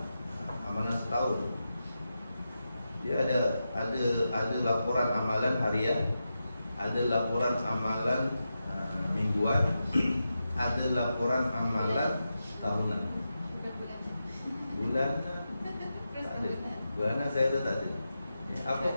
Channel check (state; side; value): inverted; both; correlation -0.89